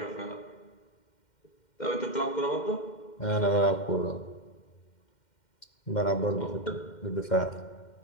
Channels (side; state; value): right; late; 2.1 ms